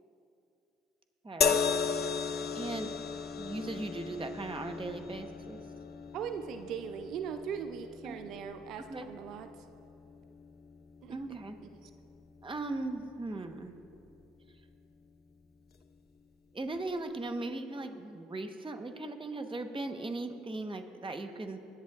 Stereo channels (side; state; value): both; normal; correlation 0.58